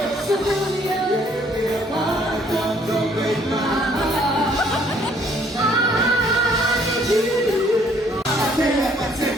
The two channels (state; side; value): normal; both; correlation 0.63